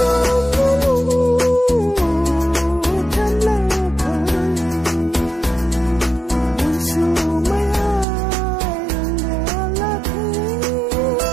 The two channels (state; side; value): drops out; left; at 8.1 s